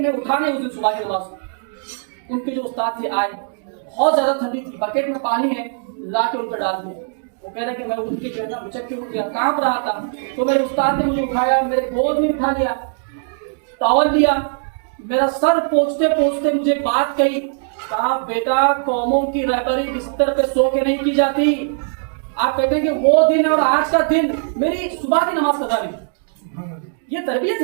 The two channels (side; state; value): left; silent; digital silence